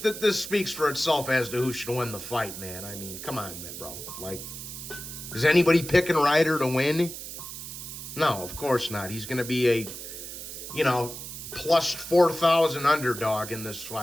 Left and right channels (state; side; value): noise; right; hiss, 10 dB below the sound